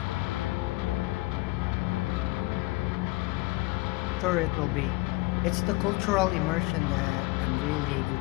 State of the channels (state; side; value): quieter; right; 23.0 dB